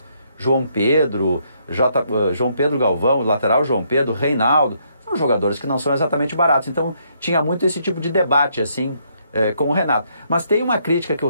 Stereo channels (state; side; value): inverted; both; correlation -0.72